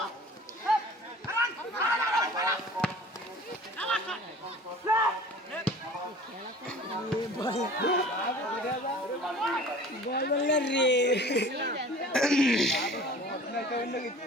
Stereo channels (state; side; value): normal; both; correlation 0.45